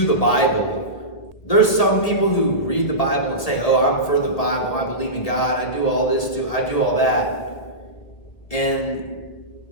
the Bible. There's some people who read the Bible and say, oh, I'm for the Bible, I believe in God, I do all this too, I do all that. And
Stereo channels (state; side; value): late; right; 2.0 ms